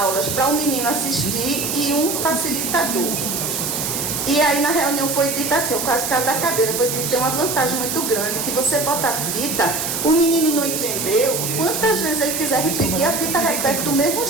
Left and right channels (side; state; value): right; noise; hiss, 2 dB below the sound